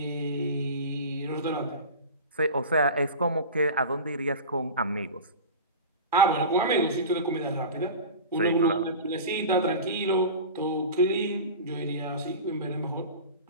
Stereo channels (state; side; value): inverted; both; correlation -0.31